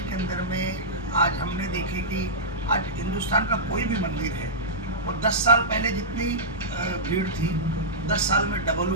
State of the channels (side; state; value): both; normal; correlation -0.14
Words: के अंदर में आज हमने देखे कि आज हिंदुस्तान का कोई भी मंदिर है और 10 साल पहले जितनी भीड़ थी 10 साल में डबल